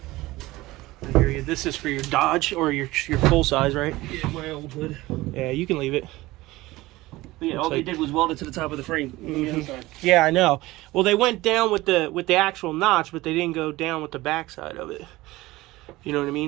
I hear you. This is for your Dodge or your full size, right? Yeah, my old hood. Yeah, you can leave it. But yeah, all they did was weld it to the top of the frame. Mm-hmm. Yeah, I know. Well, they went down with the actual notch, but they didn't go down with the backside of it. You know what I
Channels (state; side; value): quieter; left; 18.9 dB